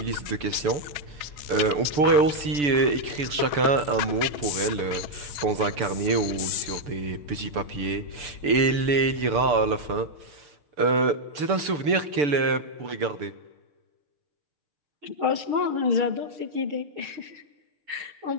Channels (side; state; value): left; late; 6.8 ms